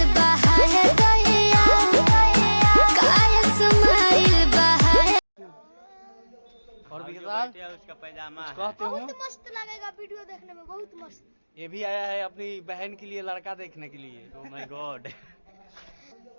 और विशाल उसका पैजामा कहते हो बहुत मस्त लगेगा वीडियो देखने में, बहुत मस्त। ये भी आया है अपनी बहन के लिए लड़का देखने के लिए। Oh my God.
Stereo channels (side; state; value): both; inverted; correlation -1.00